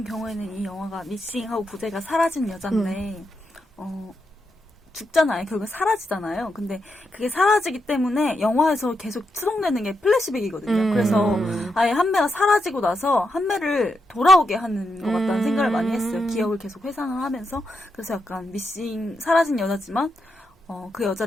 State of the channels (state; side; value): normal; both; correlation 0.84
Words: 경우에는 이 영화가 미싱하고 부제가 사라진 여잔데 죽잖아요. 결국 사라지잖아요. 근데 그게 사라지기 때문에 영화에서 계속 추록되는 게 플래시백이거든요. 그래서 아예 한매가 사라지고 나서 한매를 돌아오게 하는 것 같다는 생각을 많이 했어요. 기억을 계속 회상을 하면서. 그래서 약간 미싱 사라진 여자지만 그